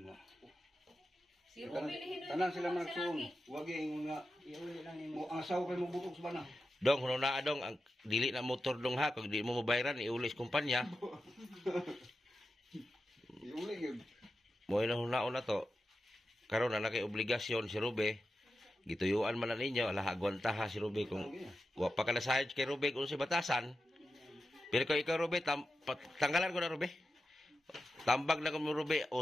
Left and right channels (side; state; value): both; normal; correlation 0.91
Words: Si Ruby lihin Tanan sila magsuon. Wag ingon nga Iuli lang mo nimo. ang asawa kay mo butok sa bana. Dong, huno na dong, ang dili na motor dong ha. Kung di mo mabayaran, iulis kumpanya. Iuli gyud. Mo ilang hunaon na to. Karon na kay obligasyon si Rube. Gituyuan man na ninyo, ala agwanta ha si Rube kung wa pa ka na sahid kay Rube kung si batasan. Pero kung ikaw Rube, tanggalan ko na Rube. Tambag na kung Rube,